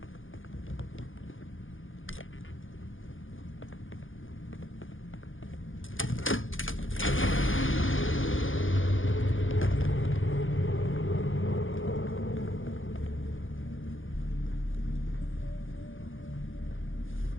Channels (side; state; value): right; late; 0.58 ms